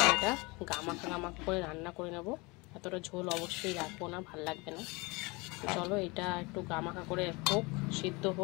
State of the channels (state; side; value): quieter; right; 26.1 dB